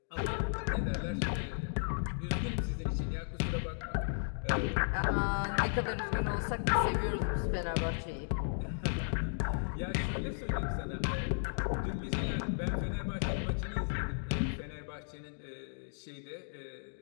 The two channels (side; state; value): right; silent; digital silence